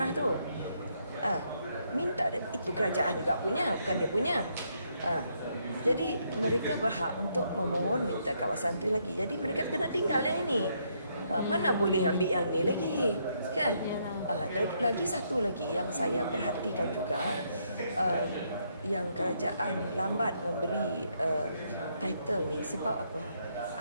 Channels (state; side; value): inverted; both; correlation -0.74